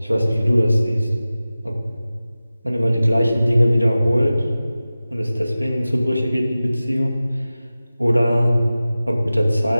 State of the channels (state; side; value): inverted; both; correlation -0.96